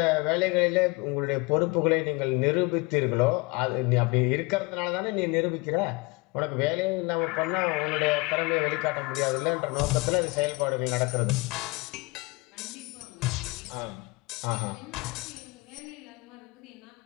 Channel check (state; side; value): quieter; right; 25.7 dB